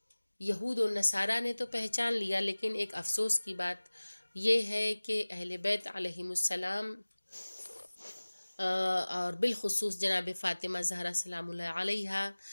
یہود و نصارہ نے تو پہچان لیا، لیکن ایک افسوس کی بات یہ ہے کہ اہل بیت علیہم السلام اور بالخصوص جناب فاطمہ زہرا سلام اللہ علیہا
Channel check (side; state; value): both; inverted; correlation -1.00